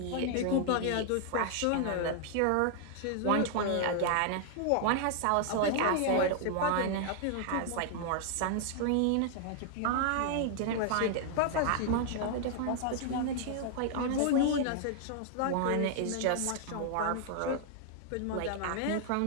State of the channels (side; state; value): both; different; correlation 0.00